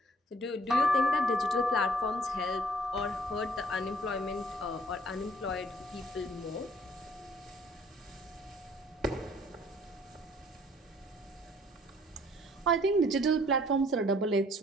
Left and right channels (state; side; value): normal; both; correlation 0.60